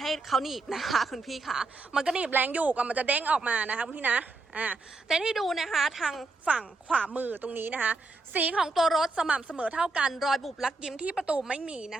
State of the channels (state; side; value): quieter; left; 3.5 dB